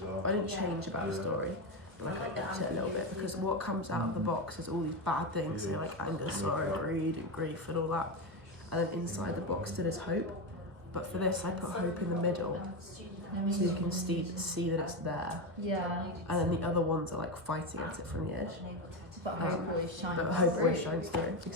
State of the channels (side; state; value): left; late; 1.3 ms